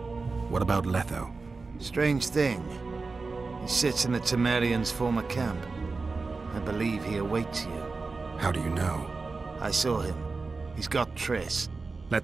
What about Letho? Strange thing. He sits in the Temerians' former camp. I believe he awaits you. How do you know? I saw him. He's got Triss.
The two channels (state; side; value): quieter; left; 4.0 dB